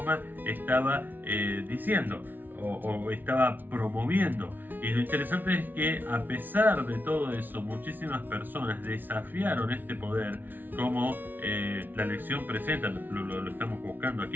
estaba diciendo o estaba promoviendo. Y lo interesante es que a pesar de todo eso, muchísimas personas desafiaron este poder, como la lección presenta, lo estamos buscando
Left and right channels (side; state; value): left; late; 0.087 ms